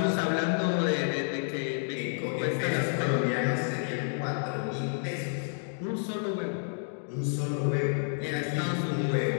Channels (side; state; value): right; silent; digital silence